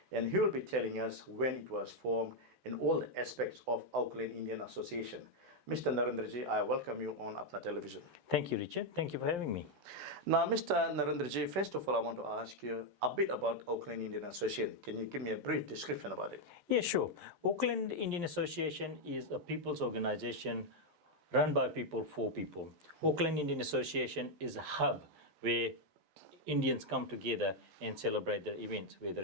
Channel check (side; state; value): left; late; 13 ms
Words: and he will be telling us when it was formed and all the aspects of Auckland Indian Association. Mr. Narendra, I welcome you on Apna Television. Thank you, Richard. Thank you for having me. Now, Mr. Narendra, first of all, I want to ask you a bit about Auckland Indian Association. Can you give me a brief description about it? Yeah, sure. Auckland Indian Association is a people's organization run by people for people. Auckland Indian Association is a hub where Indians come together and celebrate their events, whether